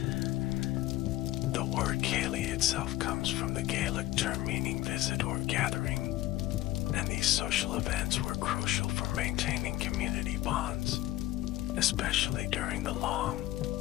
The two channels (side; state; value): right; quieter; 15.9 dB